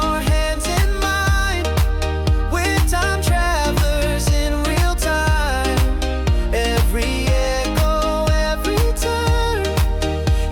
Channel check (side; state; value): both; identical; correlation 1.00